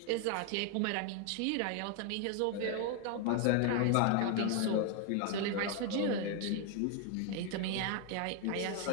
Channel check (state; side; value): different; both; correlation 0.01